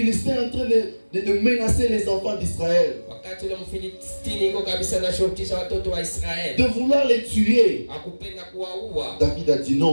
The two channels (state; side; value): inverted; both; correlation -1.00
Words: est en train de menacer les enfants d'Israël, wakati ule Mfilistini iko kabisa na shotisha watoto wa Israeli, de vouloir les tuer, akupenda kuwaua, David a dit non,